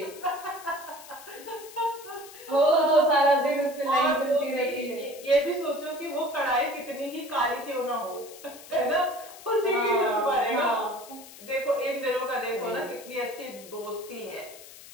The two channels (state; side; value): noise; left; hiss, 18 dB below the sound